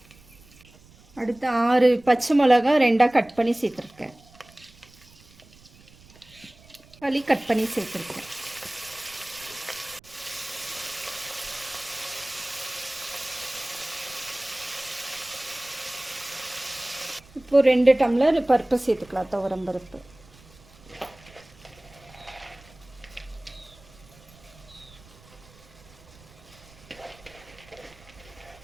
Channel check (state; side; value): noise; right; rumble, 25 dB below the sound